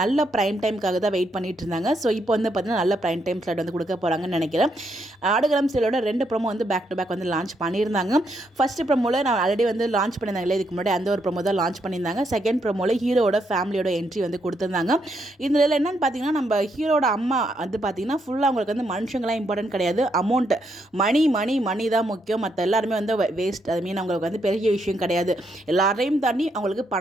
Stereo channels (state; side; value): normal; both; correlation 0.77